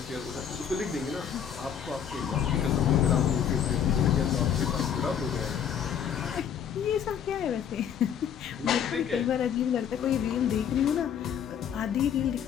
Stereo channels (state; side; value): quieter; right; 8.4 dB